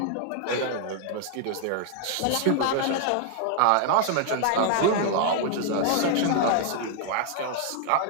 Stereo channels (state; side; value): different; both; correlation 0.00